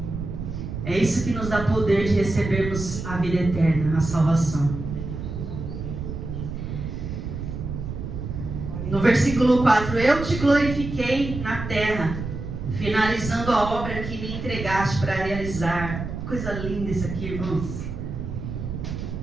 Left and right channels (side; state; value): right; noise; rumble, 6 dB below the sound